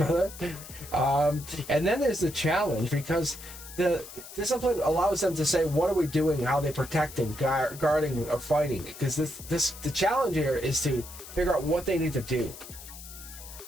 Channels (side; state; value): left; noise; hiss, 15 dB below the sound